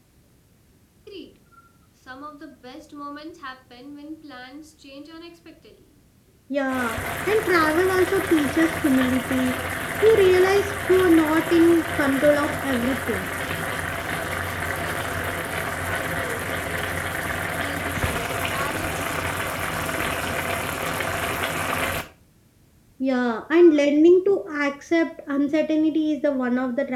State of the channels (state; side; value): identical; both; correlation 1.00